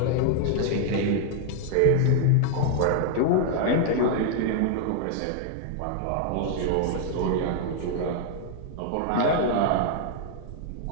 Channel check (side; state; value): both; different; correlation -0.01